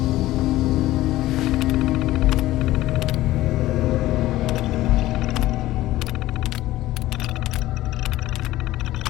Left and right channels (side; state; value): right; quieter; 16.0 dB